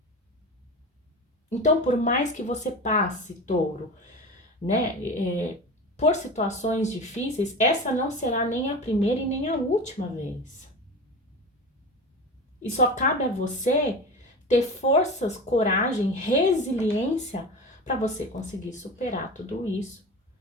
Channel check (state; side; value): normal; both; correlation 0.30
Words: Então, por mais que você passe, touro, né, por situações difíceis, essa não será nem a primeira e nem a última vez. E só cabe a você ter forças, coragem, resiliência para você conseguir superar tudo isso